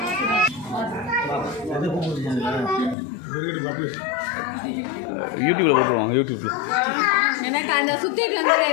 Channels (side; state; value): right; drops out; at 3.0 s